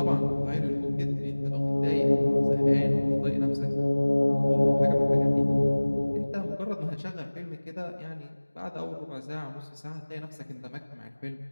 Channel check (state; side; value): inverted; both; correlation -1.00